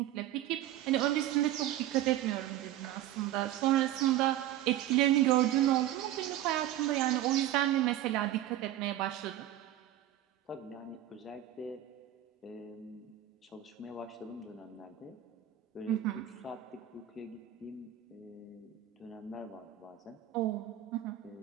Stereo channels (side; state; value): left; quieter; 12.8 dB